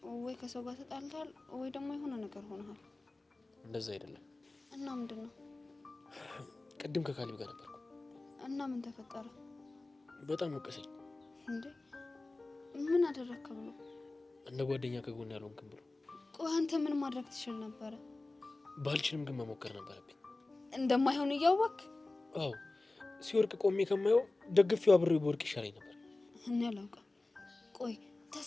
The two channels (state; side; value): quieter; right; 3.1 dB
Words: ወይ ከሰው ጋር ተጣልተሃል ወይ ደግሞ የሆነ ነገር ሆነሃል። እንደዛ አይደለም። እና ምንድን ነው? ቅድም ከካሊብ ጋር ነበርኩ። እና ምን ተፈጠረ? በጣም ወቀሰኝ። እንዴ ምን አደረግክ ብሎ? እንደ ጓደኛ ከጎን ያልሆንክም ብሎ። ቆይ አንተ ምን ማድረግ ትችል ነበረ? ባልችልም ግን መሞከር ነበረብኝ። እንደማይሆን እያወቅህ? አዎ ሲወርቅ ቆሜ ከማየው ደግፌው አብሬው በወርቅ ይሻለኝ ነበር። እኔ አላውቅም። ቆይ